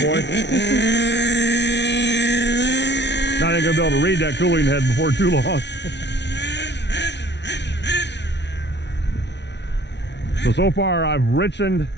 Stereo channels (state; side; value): late; right; 0.50 ms